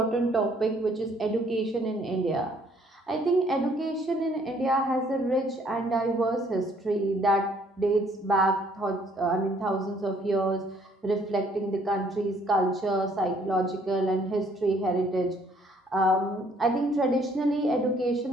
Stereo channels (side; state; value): both; normal; correlation 0.63